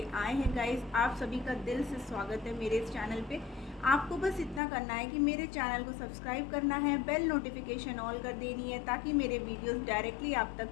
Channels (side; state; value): right; drops out; at 4.6 s